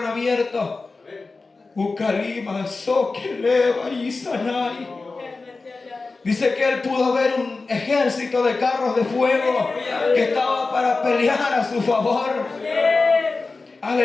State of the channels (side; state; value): right; quieter; 3.8 dB